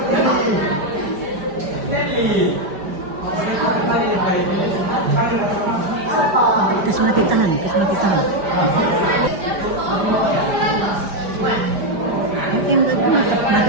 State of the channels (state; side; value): late; left; 5.0 ms